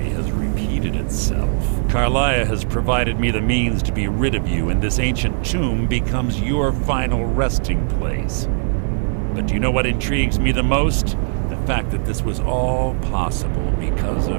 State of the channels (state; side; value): silent; left; 66 dB below the other